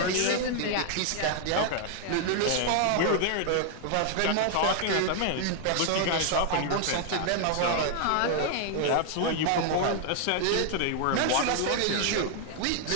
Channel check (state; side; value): different; both; correlation 0.00